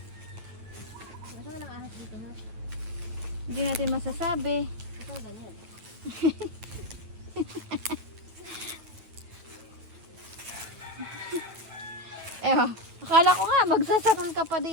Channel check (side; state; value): left; late; 9.2 ms